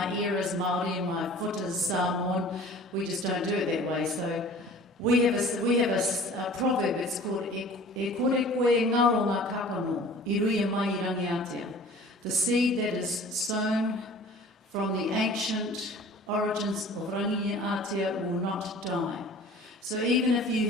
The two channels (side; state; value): both; normal; correlation 0.46